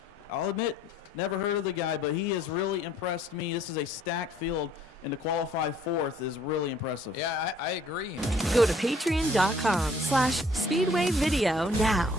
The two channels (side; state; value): both; normal; correlation 0.59